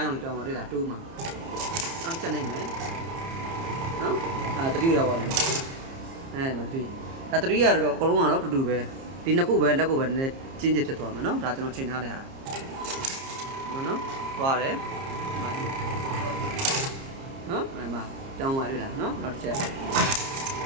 းရောင်လေးပြောင်းသွားတွေ့လား2မှာနောက်ချက်နိုင်မယ်နော်တတိရောက်သွားတယ်မတတိဒါတတိရတော့အကုန်လုံးကတော့တူတူပဲဒီနှစ်ခုပဲလက်ကိုပဲနည်းနည်းကျင်းကျဖြစ်သွားမယ်နော်ဒါကျွန်တော်ချိန်ထားတဲ့ဟာနော်သွားတယ်နော်မှာတောင်းပါရလားနော်နောက်တစ်ချက်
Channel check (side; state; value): left; late; 30 ms